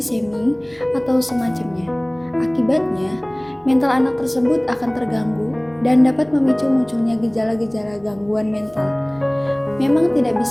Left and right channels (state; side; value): noise; right; rumble, 28 dB below the sound